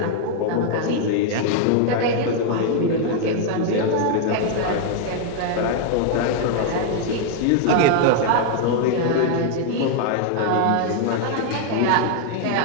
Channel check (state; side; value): different; both; correlation 0.00